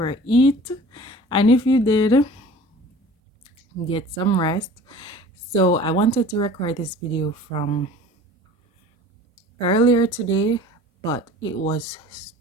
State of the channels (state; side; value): normal; both; correlation 0.44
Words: And if you did, get some rest. So, I wanted to record this video from earlier today, but it was